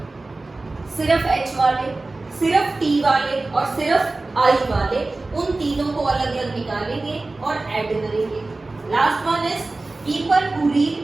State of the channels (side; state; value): left; quieter; 3.2 dB